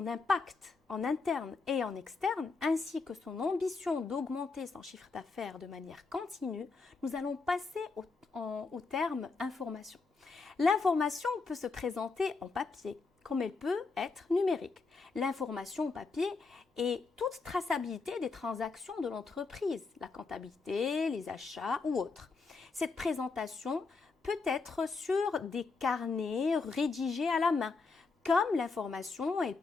impact en interne et en externe, ainsi que son ambition d'augmenter son chiffre d'affaires de manière continue, nous allons passer au terme information. L'information peut se présenter en papier, comme elle peut être numérique. L'information en papier est toute traçabilité des transactions de l'entreprise, la comptabilité, les achats ou autres. Cette présentation peut être sur des carnets rédigés à la main. Comme l'information, elle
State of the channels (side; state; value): right; quieter; 4.3 dB